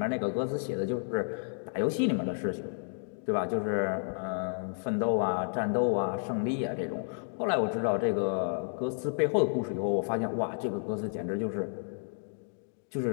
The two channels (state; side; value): silent; right; digital silence